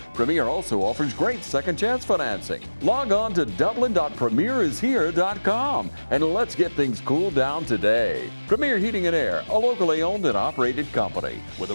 Premier also offers great second chance financing. Log on to dublin.premierishere.com and let's get things cooled down today. Premier Heating and Air, a locally owned and operated company with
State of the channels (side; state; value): both; inverted; correlation -1.00